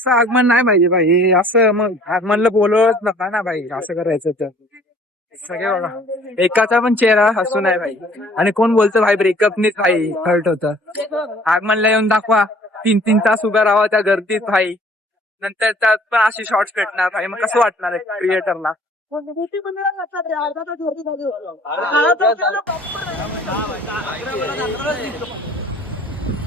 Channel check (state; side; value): normal; both; correlation 0.54